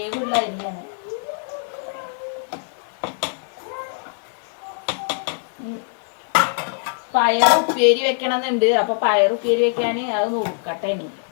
അരിയാണ്. പയർ ഉപ്പേരി വെക്കണമെന്നുണ്ട്. അപ്പൊ പയർ ഉപ്പേരി വെക്കാന് അത് നോക്കട്ടെ. ഇനി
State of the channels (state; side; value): silent; right; digital silence